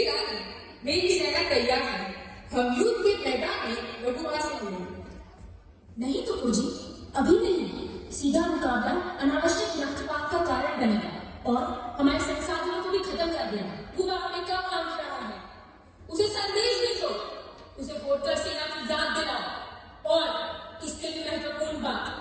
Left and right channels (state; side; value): identical; both; correlation 1.00